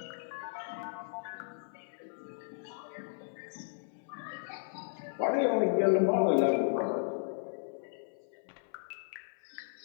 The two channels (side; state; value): right; silent; 55 dB below the other